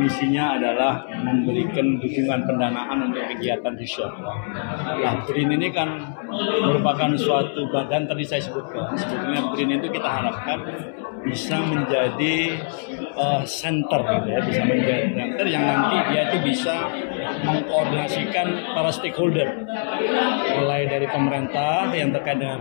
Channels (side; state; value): right; silent; 63 dB below the other